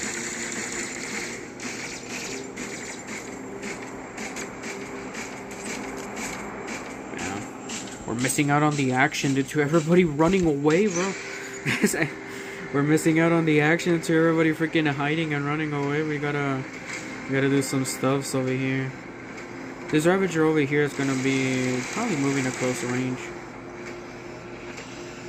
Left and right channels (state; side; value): identical; both; correlation 1.00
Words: Yeah. We're missing out on the action due to everybody running away, bro. We're missing out on the action to everybody freaking hiding and running away. We gotta do some stuffs over here. This Ravager over here is gonna be probably moving to close range.